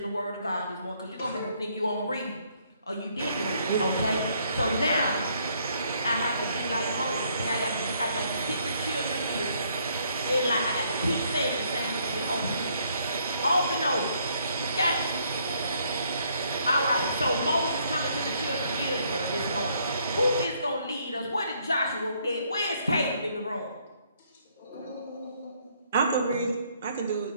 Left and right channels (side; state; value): both; inverted; correlation -0.68